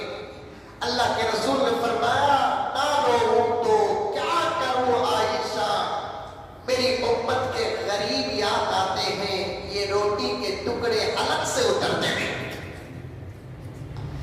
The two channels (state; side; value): identical; both; correlation 1.00